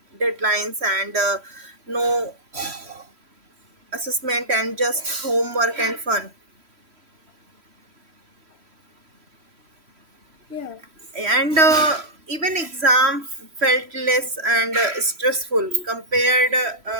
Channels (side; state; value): left; late; 3.1 ms